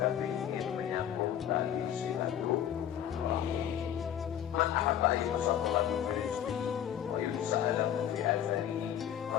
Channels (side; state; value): right; quieter; 10.2 dB